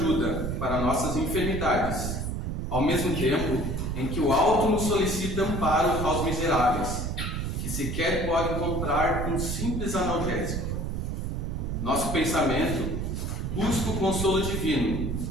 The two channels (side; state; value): right; noise; rumble, 2 dB below the sound